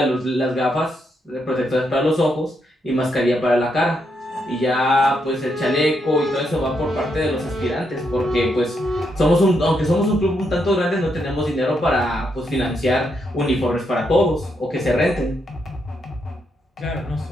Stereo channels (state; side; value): normal; both; correlation 0.79